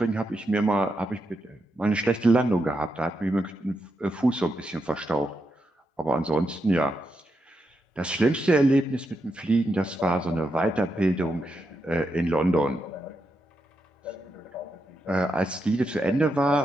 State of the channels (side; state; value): both; normal; correlation 0.84